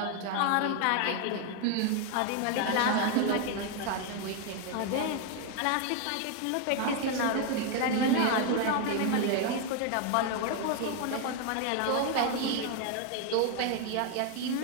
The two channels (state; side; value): different; both; correlation 0.01